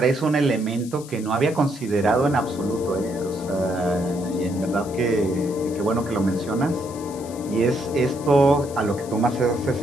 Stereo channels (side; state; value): left; noise; hiss, 18 dB below the sound